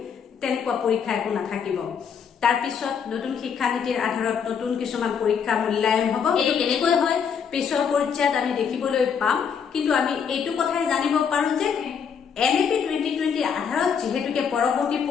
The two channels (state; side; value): quieter; right; 7.0 dB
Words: তেনেকুৱা পৰীক্ষা একো নাথাকিব। তাৰ পিছত নতুন শিক্ষানীতিৰ আধাৰত নতুন কিছুমান পৰীক্ষা মূল্যায়ন হ'ব। এইটো কেনেকৈ হয় পিছৰ পৰ্যায়ত আমি দেখিবলৈ পাম, কিন্তু আমি এইটো কথাই জানিব পাৰো যে NEP 2020 আধাৰত যিহেতুকে পৰৱৰ্তী